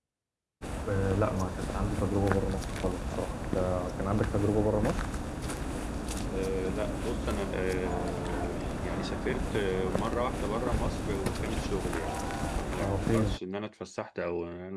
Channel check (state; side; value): identical; both; correlation 1.00